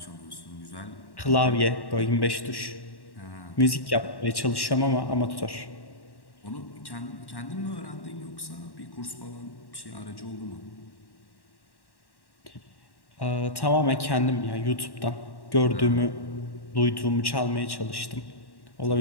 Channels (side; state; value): right; late; 1.1 ms